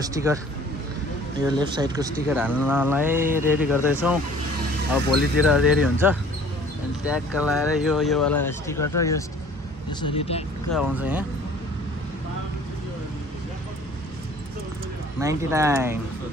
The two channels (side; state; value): both; normal; correlation 0.52